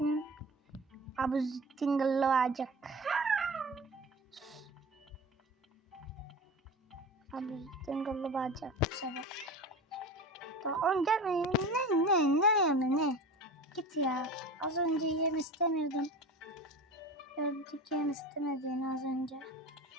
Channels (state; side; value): normal; both; correlation 0.32